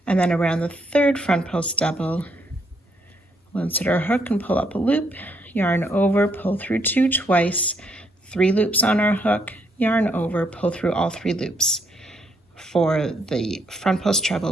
and then around the third front post double, we'll insert our hook and pull up a loop, yarn over, pull through 2 twice, 3 loops on our hook, yarn over, pull through all 3 loops for the front post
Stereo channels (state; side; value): normal; both; correlation 0.73